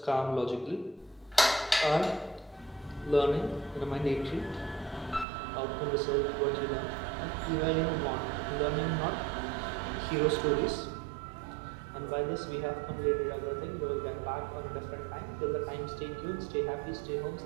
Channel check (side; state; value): left; drops out; at 5.2 s